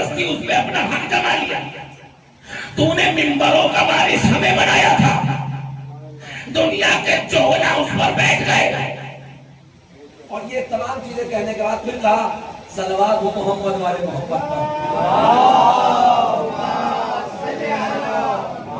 اس پہ اپنا حق جما لیا، تو نے منبروں کا وارث ہمیں بنایا تھا، دنیا کے چولا اس پر بیٹھ گئے۔ اور یہ تمام چیزیں کہنے کے بعد پھر کہا صلوات ہو محمد والے محمد پر۔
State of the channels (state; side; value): identical; both; correlation 1.00